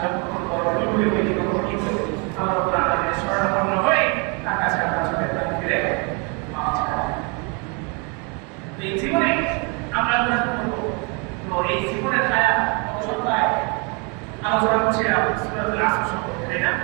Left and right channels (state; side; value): quieter; left; 33.2 dB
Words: যতক্ষণ বড় ভুল হয়ে গেল কিন্তু আল্লাহ রাব্বুল আলামিনের শরণাপন্ন হয়ে তার কাছে আমরা চলে ফিরে মাফ চাই। এই জীবনে আমরা গুনাহ করব, তো এই জীবনের হায়াত অবসরটায় আলোচনা করছিলাম সূরাতুল আসর সম্পর্কে, তাই না?